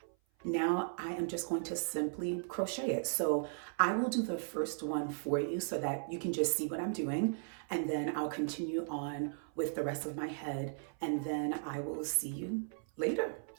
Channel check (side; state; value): left; silent; 53 dB below the other